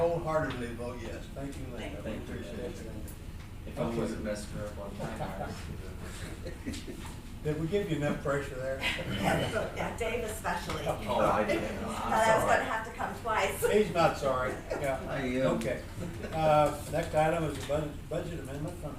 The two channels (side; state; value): both; identical; correlation 1.00